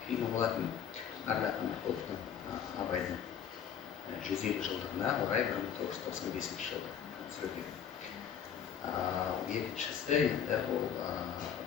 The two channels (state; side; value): quieter; right; 8.3 dB